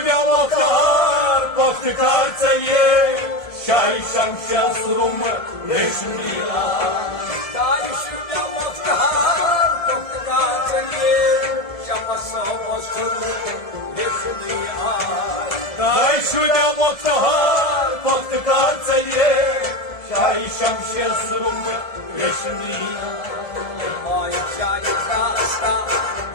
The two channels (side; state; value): right; late; 1.7 ms